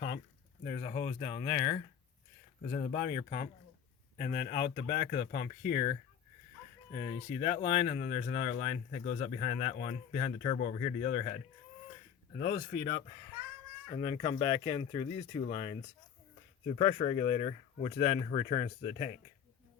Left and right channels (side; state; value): right; quieter; 8.4 dB